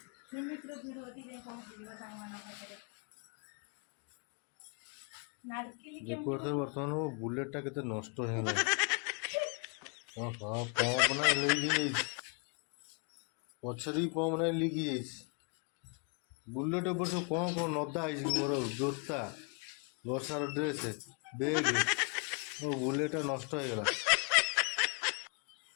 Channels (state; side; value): quieter; right; 37.4 dB